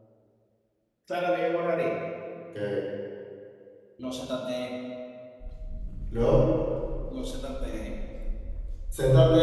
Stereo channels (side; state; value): both; identical; correlation 1.00